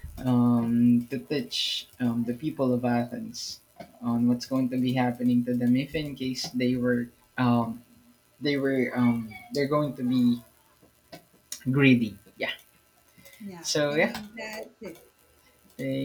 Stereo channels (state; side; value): identical; both; correlation 1.00